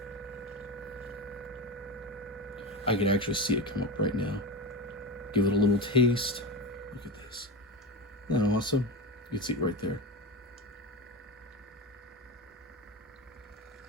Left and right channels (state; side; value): normal; both; correlation 0.22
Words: I can actually see it come up right now. Give it a little taste. Look at this. Isn't that awesome? You can see it right there.